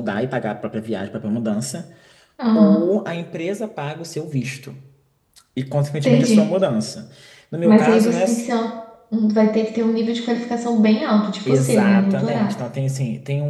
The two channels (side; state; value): both; identical; correlation 1.00